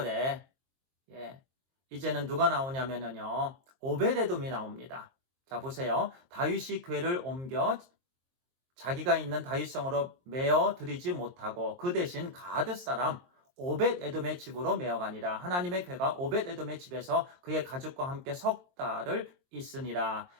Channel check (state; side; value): late; left; 23 ms